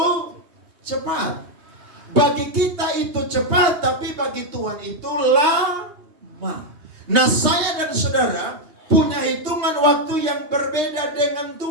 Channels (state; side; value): late; left; 3.2 ms